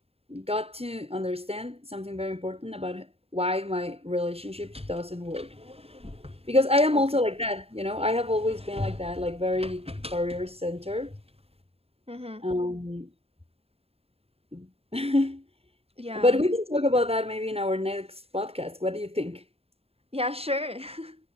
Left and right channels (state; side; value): late; left; 0.29 ms